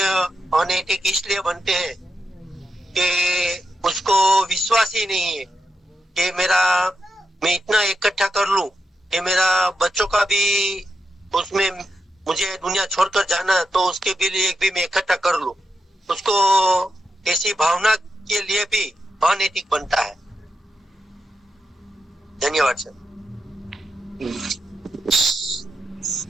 अनैतिक इसलिए बनते हैं कि उसको विश्वास ही नहीं है कि मैं इतना इकट्ठा कर लूं कि मेरा बच्चों का भी उसमें मुझे दुनिया छोड़कर जाना तो उसके भी लिए भी मैं इकट्ठा कर लूं। उसको ऐसी भावना के लिए भी अनैतिक बनता है। धन्यवाद सर।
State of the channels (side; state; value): both; normal; correlation 0.86